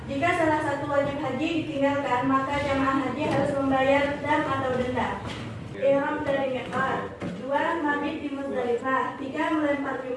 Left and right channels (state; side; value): identical; both; correlation 1.00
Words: Jika salah satu wajib haji ditinggalkan, maka jamaah haji harus membayar dam atau denda. Ihram dari miqat. 2. Mabit di Muzdalifah. 3. Melempar